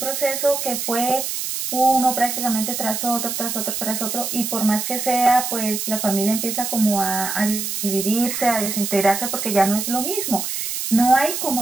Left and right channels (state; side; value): noise; right; hiss, 3 dB below the sound